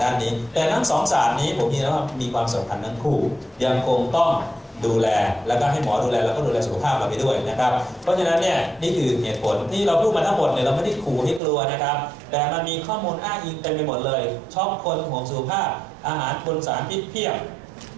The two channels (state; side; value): drops out; left; at 11.4 s